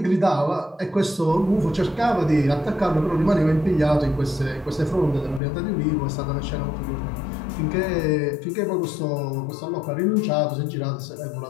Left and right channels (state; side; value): drops out; right; at 5.4 s